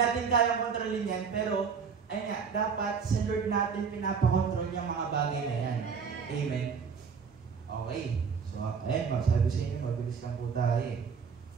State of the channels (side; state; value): left; quieter; 6.0 dB